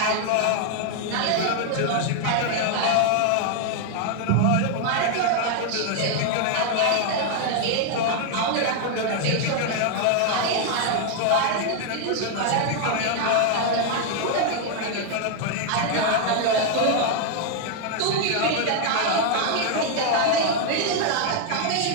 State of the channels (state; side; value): different; both; correlation 0.00